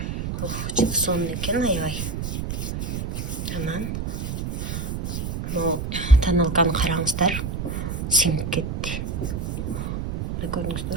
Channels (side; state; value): right; noise; rumble, 3 dB below the sound